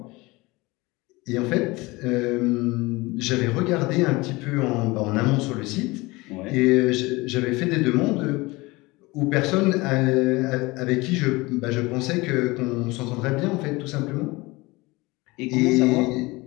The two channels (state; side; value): quieter; right; 22.7 dB